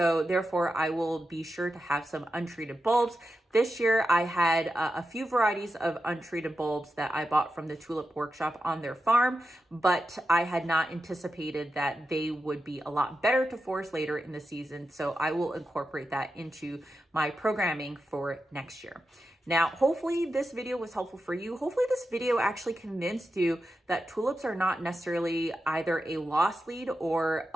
therefore I will be sure to have some untreated bulbs. This year, I had a few varieties of untreated bulbs that I bought from the Tulip Workshop on their farm, but I had not anticipated that they would be a lot better to force later in the season. So I will incorporate that into my programming for next year. Now, hopefully this video was helpful for you. Hopefully this video actually convinced you that tulips are not necessarily either a loss lead or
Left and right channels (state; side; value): normal; both; correlation 0.90